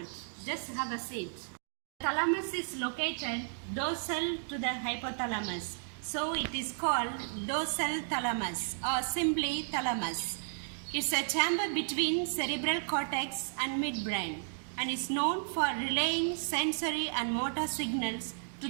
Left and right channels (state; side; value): silent; left; digital silence